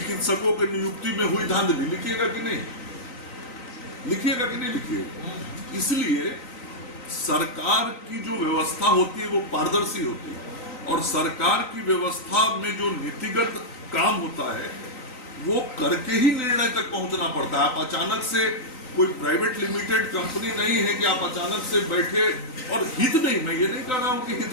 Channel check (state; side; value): late; right; 3.9 ms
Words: की नियुक्ति में हुई धांधली। लिखिएगा कि नहीं? लिखिएगा कि नहीं लिखिएगा? इसलिए सरकार की जो व्यवस्था होती है वो पारदर्शी होती है, और सरकार की व्यवस्था में जो नीतिगत काम होता है वो करके ही निर्णय तक पहुंचना पड़ता है। आप अचानक से, कोई प्राइवेट लिमिटेड कंपनी नहीं है कि आप अचानक से बैठे, और हित नहीं, मैं ये नहीं कह रहा हूं कि